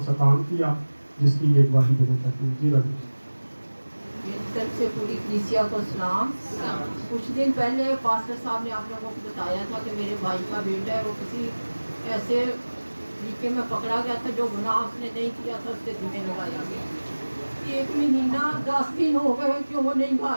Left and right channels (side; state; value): both; inverted; correlation -1.00